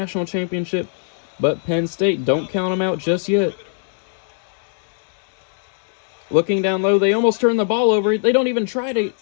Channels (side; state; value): right; silent; digital silence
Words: championship. But Penn State, don't count them out just yet. Looking down low, they almost turn the ball over. They don't even try to